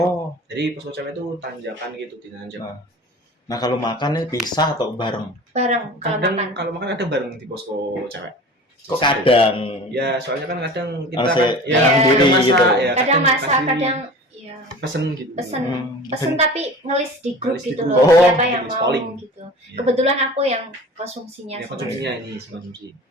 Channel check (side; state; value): both; normal; correlation 0.39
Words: Jadi posko cewek itu tanjakan gitu, dinanjak. Nah, kalau makan nih pisah atau bareng? Bareng kalau Kadang makan. kalau makan ada bareng di posko cewek. Kok kadang? Ya, soalnya kan kadang kita Harus kan ya, sendiri kadang masak, gitu. ya, Kadang masak, kasih kadang ya pesen gitu. pesen Hmm. pesen tapi ngelis di grup Ngelis di gitu grup. loh, Oh, siapa yang tulis mau polling. gitu. Iya. Kebetulan aku yang konsumsinya Ya, semuanya. konsumsinya ini konsumsi.